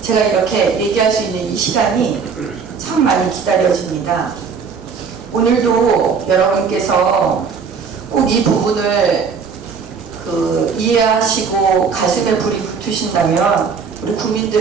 제가 이렇게 얘기할 수 있는 이 시간이 참 많이 기다려집니다. 오늘도 여러분께서 꼭 이 부분을 이해하시고 가슴에 불이 붙으신다면 우리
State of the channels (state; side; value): quieter; left; 5.8 dB